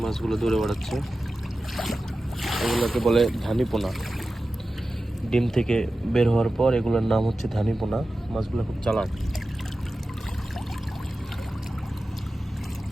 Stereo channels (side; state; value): both; normal; correlation 0.94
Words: মাছগুলো দৌড়ে বেড়াচ্ছে এগুলোকে বলে ধানিপোনা। ডিম থেকে বের হওয়ার পর এগুলোর নাম হচ্ছে ধানিপোনা। মাছগুলো খুব চালাক।